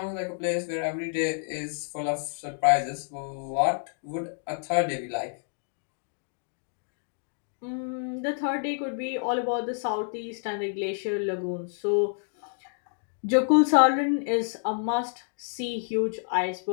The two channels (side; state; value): right; silent; digital silence